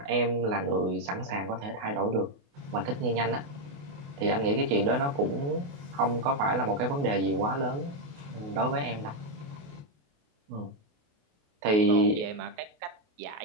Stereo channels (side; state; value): left; late; 28 ms